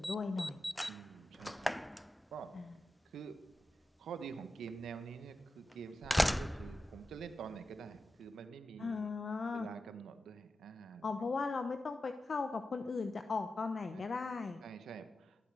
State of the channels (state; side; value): normal; both; correlation 0.92